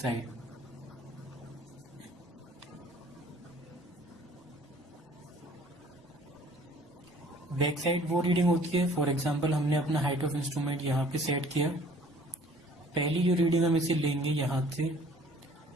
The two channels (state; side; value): normal; both; correlation 0.53